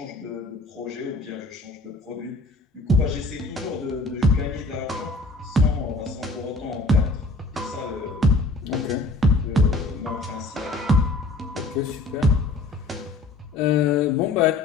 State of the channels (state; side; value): quieter; right; 3.1 dB